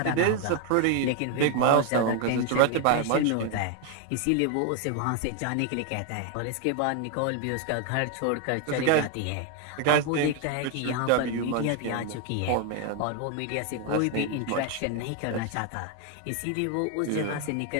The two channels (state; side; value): different; both; correlation 0.01